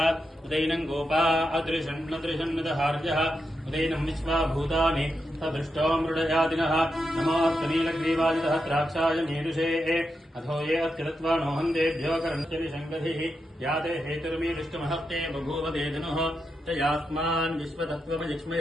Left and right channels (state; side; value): normal; both; correlation 0.86